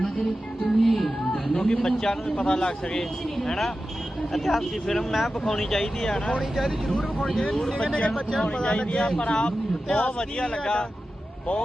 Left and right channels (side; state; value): both; normal; correlation 0.93